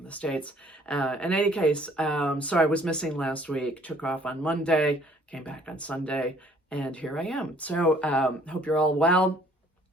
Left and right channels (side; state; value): both; normal; correlation 0.58